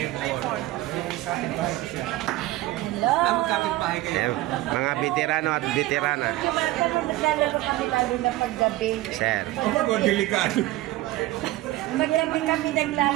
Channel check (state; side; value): quieter; left; 17.0 dB